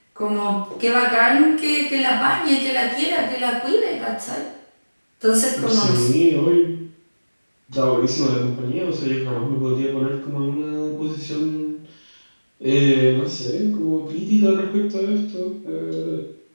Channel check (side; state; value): both; inverted; correlation -1.00